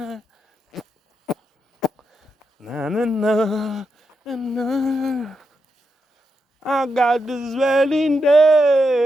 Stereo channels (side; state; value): both; normal; correlation 0.85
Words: Na na na na na. I got this swelling day.